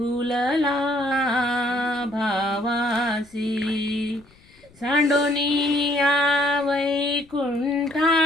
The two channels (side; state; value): left; noise; rumble, 28 dB below the sound